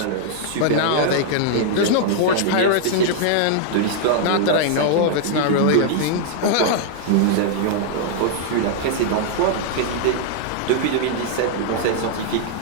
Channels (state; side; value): different; both; correlation -0.01